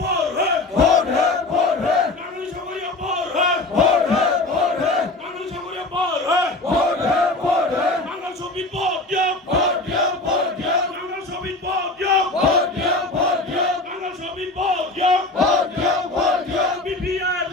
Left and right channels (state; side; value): quieter; right; 3.0 dB